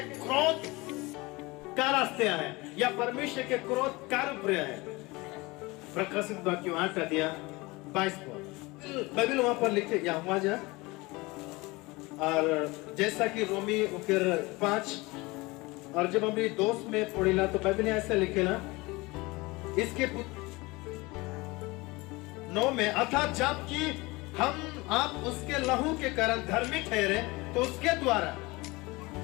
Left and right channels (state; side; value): quieter; right; 23.2 dB